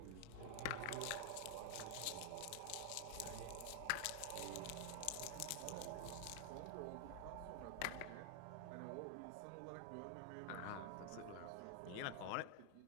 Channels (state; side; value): different; both; correlation 0.00